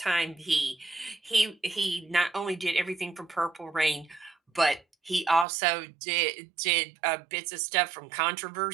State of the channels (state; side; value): drops out; left; at 5.5 s